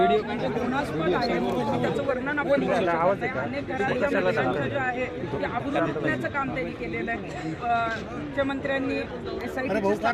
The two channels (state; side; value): identical; both; correlation 1.00